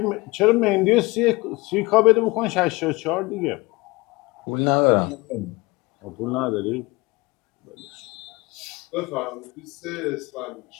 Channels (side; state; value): right; quieter; 23.4 dB